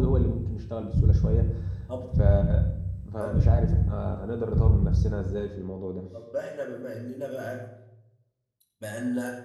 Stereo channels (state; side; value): identical; both; correlation 1.00